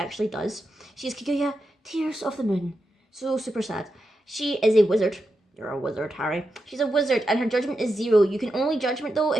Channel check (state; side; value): normal; both; correlation 0.87